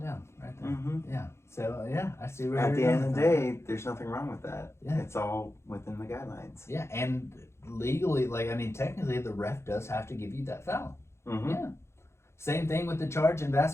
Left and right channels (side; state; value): right; late; 0.13 ms